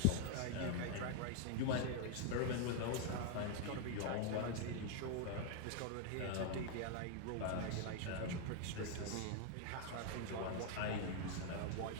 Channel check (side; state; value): both; different; correlation 0.00